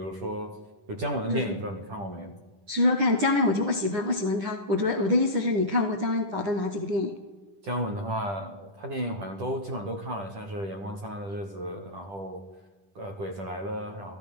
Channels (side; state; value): left; late; 10 ms